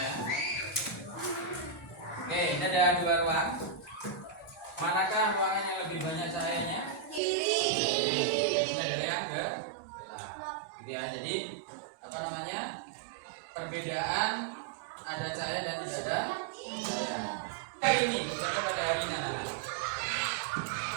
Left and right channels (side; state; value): left; drops out; at 7.2 s